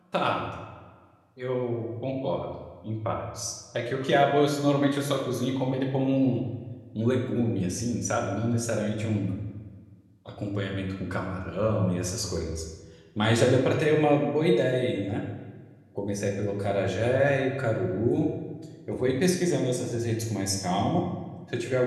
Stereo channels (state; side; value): identical; both; correlation 1.00